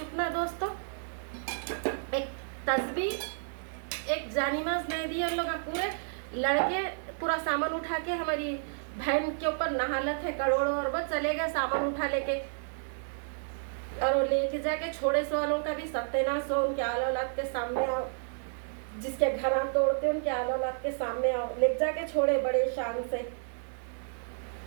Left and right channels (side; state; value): left; silent; 57 dB below the other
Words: दोस्तों। एक तस्बीह एक जानीमाज नहीं दी। उन लोग पूरे लड़के पूरा सामान उठा के हमारी बहन के ऊपर नहालत है करोड़ों, और वो चले गए सामान उठा लेके, और वो लेके जाके छोड़े सो वालों का भी सत्यानाश हो। उनके आल औलाद के सामने आओ, जिसके घर आप तोड़ते उनके आल औलाद के सामने आओ। ले जाके छोड़े बड़े शान से,